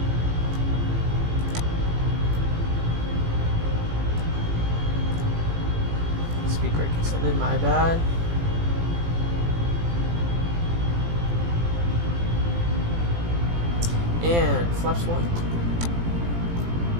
Speed brake extended, my bad. And flaps 1.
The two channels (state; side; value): late; left; 18 ms